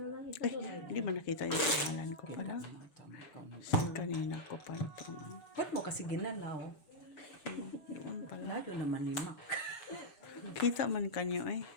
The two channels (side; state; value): right; late; 6.9 ms